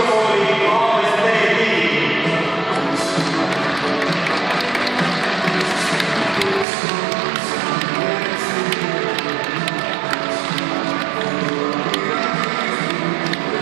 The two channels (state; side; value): drops out; left; at 6.7 s